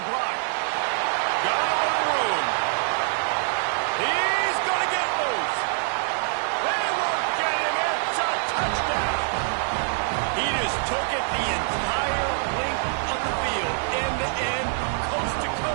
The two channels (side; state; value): left; silent; 62 dB below the other